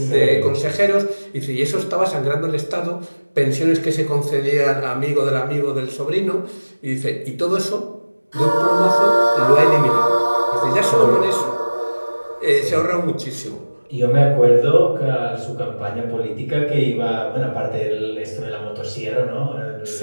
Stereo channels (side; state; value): both; inverted; correlation -1.00